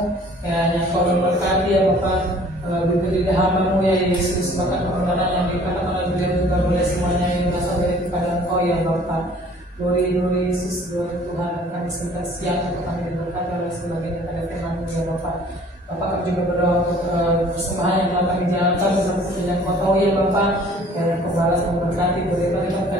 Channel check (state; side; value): normal; both; correlation 0.53